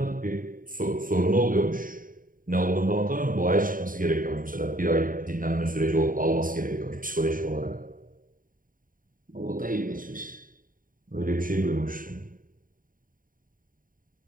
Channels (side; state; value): left; late; 0.40 ms